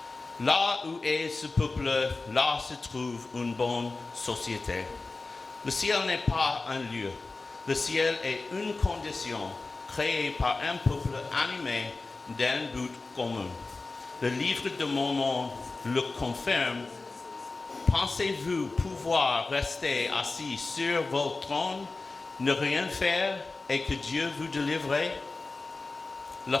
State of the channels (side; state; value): right; quieter; 3.6 dB